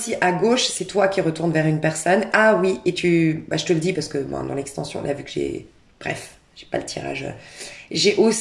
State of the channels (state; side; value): identical; both; correlation 1.00